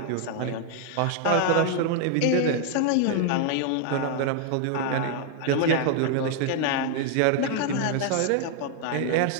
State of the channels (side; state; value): both; different; correlation 0.00